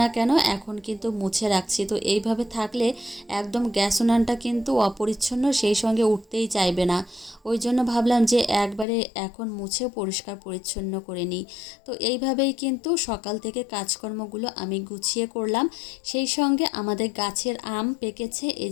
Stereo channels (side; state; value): right; drops out; at 8.8 s